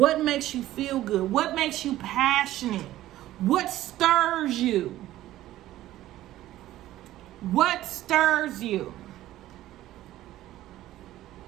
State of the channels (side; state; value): left; quieter; 14.6 dB